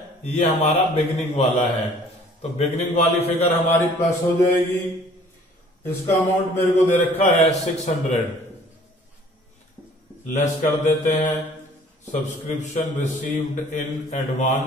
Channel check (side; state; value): both; normal; correlation 0.53